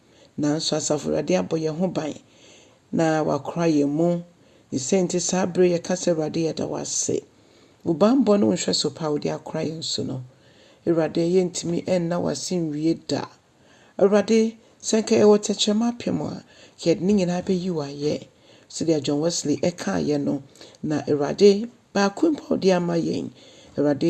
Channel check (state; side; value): identical; both; correlation 1.00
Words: Nanso asafurade abo ye ho ban. Na wakra ye mu. Ni senti sabre ye kase rade ye da wase. Ubambo no nhwe so pa odi akra ye nso no. Irade yentimi enna wasin wie da. Awurade senka ewo techema pemwa yed ni nyina be yiwa ye so dia John Wesley eka ye no na awurade ba kumpa di ama yen